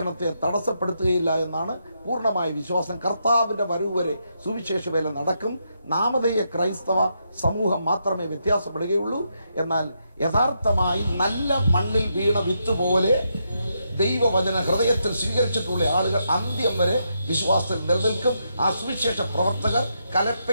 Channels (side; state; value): both; inverted; correlation -0.81